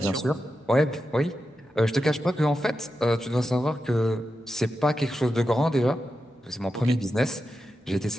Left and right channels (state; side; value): normal; both; correlation 0.89